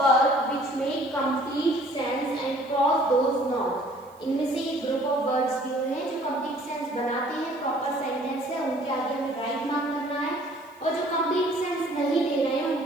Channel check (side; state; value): right; noise; hiss, 30 dB below the sound